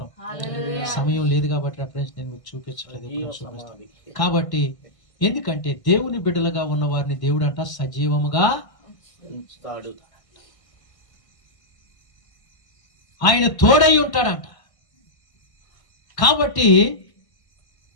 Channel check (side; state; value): right; late; 1.5 ms